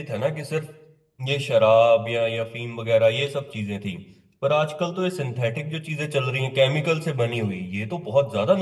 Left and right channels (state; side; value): identical; both; correlation 1.00